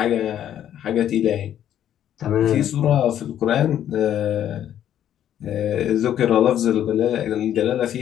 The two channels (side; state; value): right; quieter; 10.7 dB